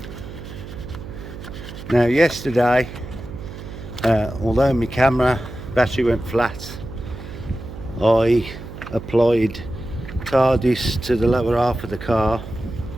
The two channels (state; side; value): noise; right; hum, 12 dB below the sound